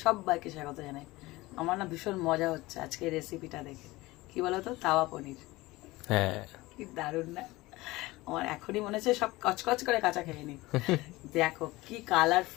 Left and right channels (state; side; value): quieter; right; 20.1 dB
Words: সবাইকে স্বাগত জানাই। আমার না ভীষণ মজা হচ্ছে আজকে এই রেসিপিটা দেখে। কি বলো তো, তাওয়া পনির। হ্যাঁ, কি দারুণ না? আমার এখনই মনে হচ্ছে সব কচকচ করে কাঁচা খেয়ে নি। দেখো কি